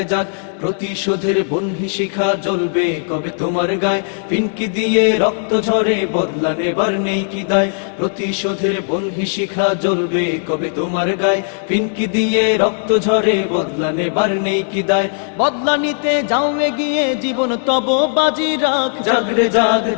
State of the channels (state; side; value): silent; right; digital silence